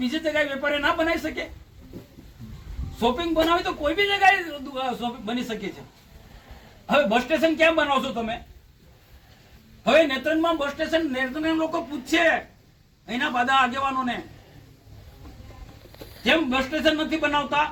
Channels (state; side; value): identical; both; correlation 1.00